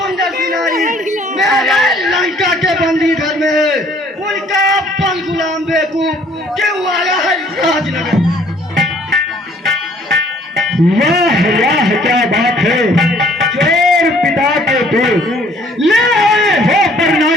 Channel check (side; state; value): both; normal; correlation 0.58